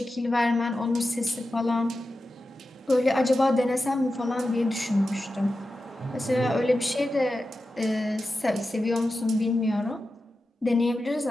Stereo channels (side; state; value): both; normal; correlation 0.92